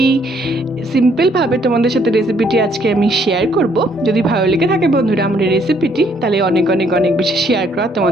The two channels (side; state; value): both; normal; correlation 0.67